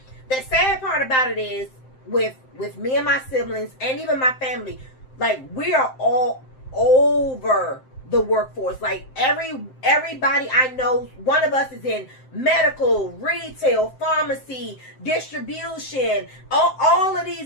the sad part about it is with me and my siblings and even my family, like, we are all over the workforce. Like, everybody I know, one of us is in medical, retail, pharmacy, distribution, all of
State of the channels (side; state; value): right; late; 7.7 ms